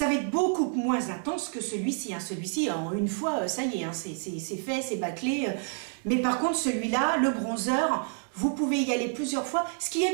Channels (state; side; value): silent; left; 59 dB below the other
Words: va être beaucoup moins intense que celui-ci, hein. Celui-ci en une fois ça y est, hein, c'est fait, c'est bâclé, mais par contre celui-là, le bronzer, vous pouvez y aller plusieurs fois, ce qui est